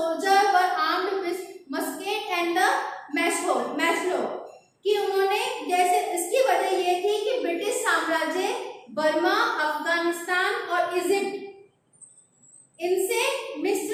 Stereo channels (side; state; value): both; identical; correlation 1.00